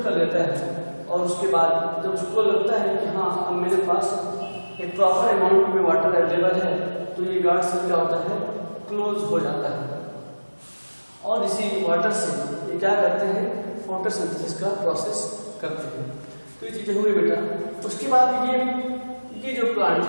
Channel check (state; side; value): inverted; both; correlation -1.00